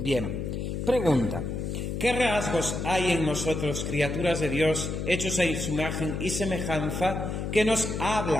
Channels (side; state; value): left; noise; hum, 3 dB below the sound